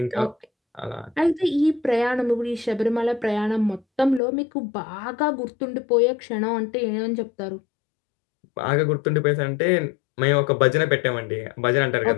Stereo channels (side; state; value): right; drops out; at 4.2 s